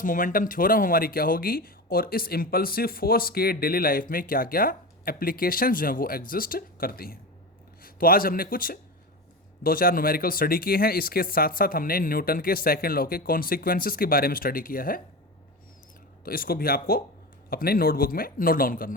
मोमेंटम थ्योरम हमारी क्या होगी, और इस इम्पल्सिव फोर्स के डेली लाइफ में क्या क्या एप्लीकेशन जो हैं वो एग्जिस्ट करती हैं। तो आज हमने कुछ 2-4 न्यूमेरिकल स्टडी किए हैं, इसके साथ साथ हमने न्यूटन के सेकंड लॉ के कॉन्सिक्वेंसेस के बारे में स्टडी किया है। तो इसको भी आपको अपने नोटबुक में नोट डाउन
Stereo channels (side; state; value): both; normal; correlation 0.24